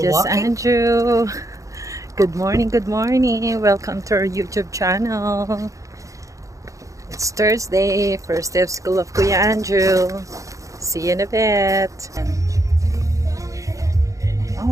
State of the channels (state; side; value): late; left; 0.16 ms